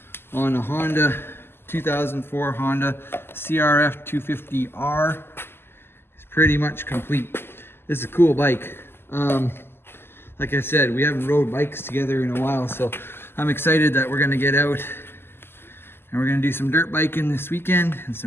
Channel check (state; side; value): late; right; 0.11 ms